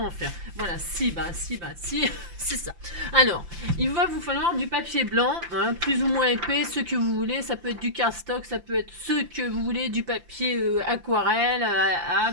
en faire. Voilà, si, c'est ça. Alors, il va vous falloir du papier blanc, hein, plus ou moins épais, ce que vous voulez. Ça peut être du cardstock, ça peut être ce que vous voulez, du papier aquarelle,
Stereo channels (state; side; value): late; left; 5.8 ms